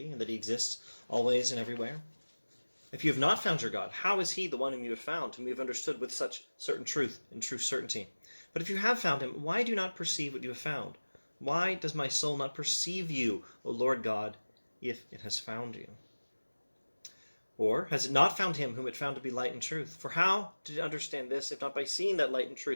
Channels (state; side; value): inverted; both; correlation -1.00